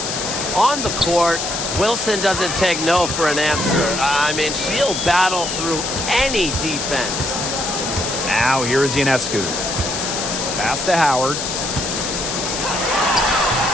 On the court, Wilson doesn't take no for an answer. I mean, she'll battle through any defense. Now here's Ionescu. Pass to Howard.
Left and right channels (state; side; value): noise; left; hiss, 3 dB below the sound